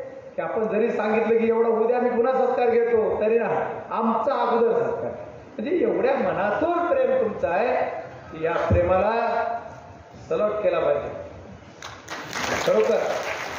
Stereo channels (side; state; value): both; identical; correlation 1.00